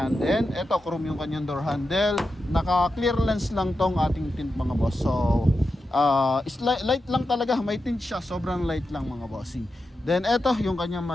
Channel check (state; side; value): normal; both; correlation 0.89